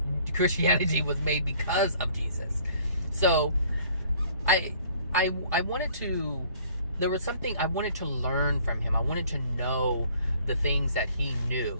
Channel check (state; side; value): inverted; both; correlation -0.56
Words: Christianity was made because of Jesus. So I wanted to there was something I wanted to learn from him. I wanted to know the things that he